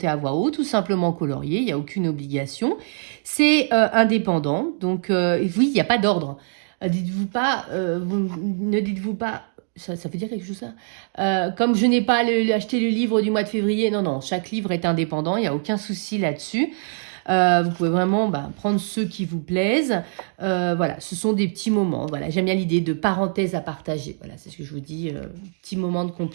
à voix haute, tout simplement colorier, il n'y a aucune obligation. C'est indépendant, donc oui, il n'y a pas d'ordre. Dites-vous pas, ne dites-vous pas, ça veut dire quelque chose ça comme je n'ai pas acheté le livre du mois de février, non, chaque livre est indépendant, il n'y a aucun souci là-dessus. Vous pouvez vraiment prendre ceux qui vous plaisent. Voilà, ce sont des petits moments. Voilà, j'aime bien l'idée de parenthèse à partager. Voilà, c'est ce que je vous dis, petits moments de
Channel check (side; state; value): left; silent; digital silence